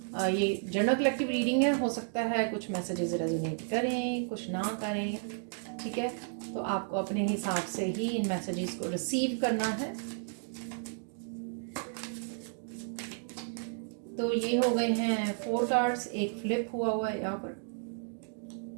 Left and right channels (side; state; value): left; silent; digital silence